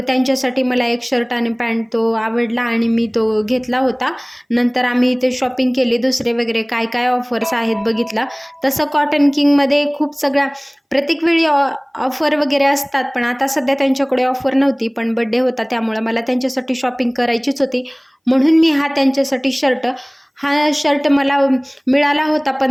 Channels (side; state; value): both; identical; correlation 1.00